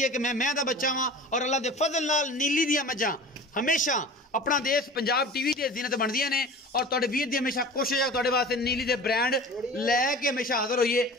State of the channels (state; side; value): normal; both; correlation 0.38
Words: ਹੈ ਕਿ ਮੈਂ ਦਾ ਬੱਚਾ ਵਾਂ ਔਰ ਅੱਲਾ ਦੇ ਫਜ਼ਲ ਨਾਲ ਨੀਲੀ ਦੀਆਂ ਮੱਝਾਂ ਹਮੇਸ਼ਾ अपना देश पंजाब टीवी की जीनत बनदियां ने और तुहाडे वीर दी हमेशा कोशिश है तुहाडे वास्ते नीली दे ब्रांड लैके हमेशा हाजिर होइए